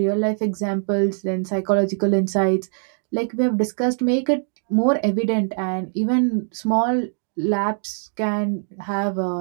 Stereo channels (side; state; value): left; silent; digital silence